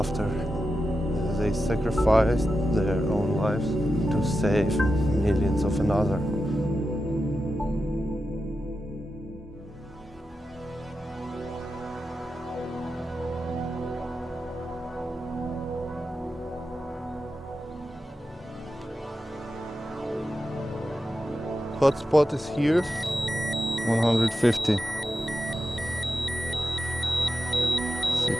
They sacrificed their own lives to save millions of another. Hotspot is here, 150,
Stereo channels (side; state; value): both; normal; correlation 0.90